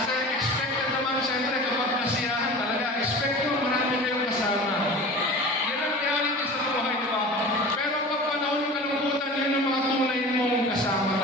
expected naman, siyempre, kapag kasiyahan talaga, expect nyo, marami kayong kasama. Yan ang reality sa buhay, di ba? Pero pag panahon ng kalungkutan, yun ang mga tunay mong kasama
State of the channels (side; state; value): both; normal; correlation 0.37